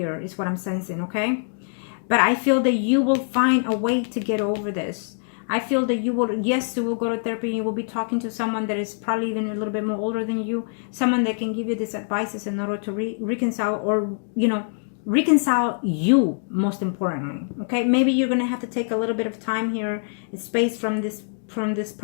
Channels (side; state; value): right; silent; digital silence